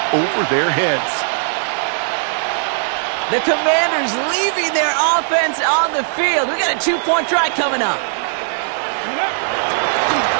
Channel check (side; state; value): left; silent; 67 dB below the other